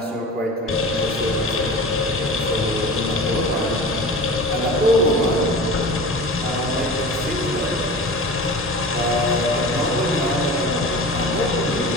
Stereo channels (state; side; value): normal; both; correlation 0.35